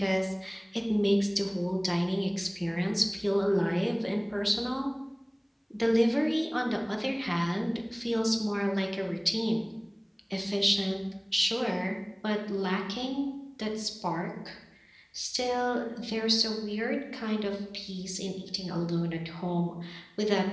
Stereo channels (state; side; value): identical; both; correlation 1.00